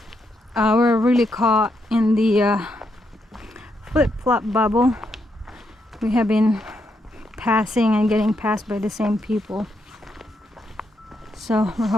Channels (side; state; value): both; normal; correlation 0.79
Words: We're really caught in the flip-flop bubble. We have been passing and getting passed by the same people. So we're